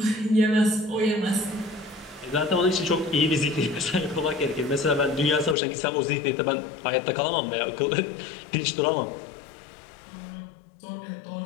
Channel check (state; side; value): drops out; right; at 5.6 s